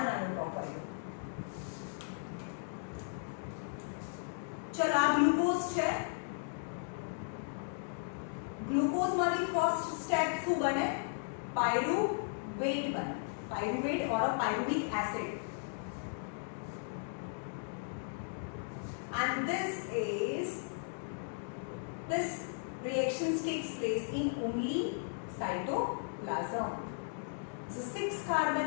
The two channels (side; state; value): right; silent; digital silence